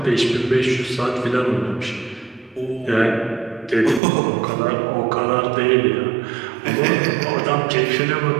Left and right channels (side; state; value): left; drops out; at 4.0 s